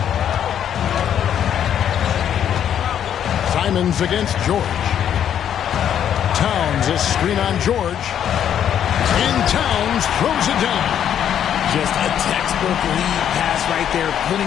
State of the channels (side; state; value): right; quieter; 9.5 dB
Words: Simons against George. Towns a screen on George. And Towns throws it down. Just a textbook lead pass right there, putting